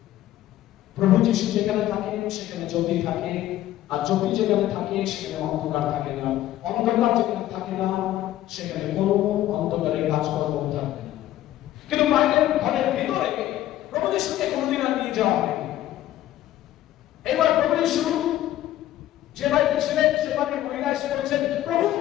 প্রভু যিশু যেখানে থাকেন সেখানে জ্যোতি থাকে, আর জ্যোতি যেখানে থাকে সেখানে অন্ধকার থাকে না, অন্ধকার যেখানে থাকে না সেখানে কোনো অন্ধকারের কাজকর্ম থাকবে না। কিন্তু বাইরের ঘরের ভিতরে প্রভু যিশুকে কোনোদিন আর নিয়ে যাওয়া হয়নি। এবার প্রভু যিশু যে বাড়িতে ছিলেন সে বাড়ির মহিলা এসে বলছেন, প্রভু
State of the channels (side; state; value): right; quieter; 13.7 dB